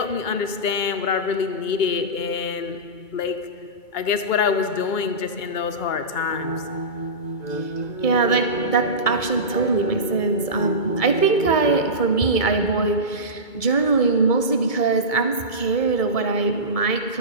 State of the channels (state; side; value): late; right; 2.2 ms